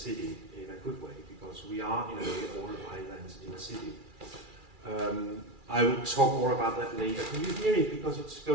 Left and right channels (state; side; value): late; left; 2.4 ms